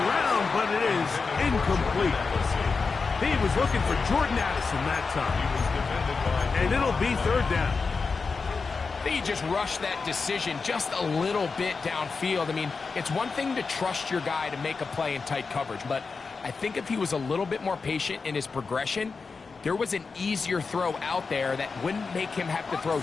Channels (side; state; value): right; quieter; 4.7 dB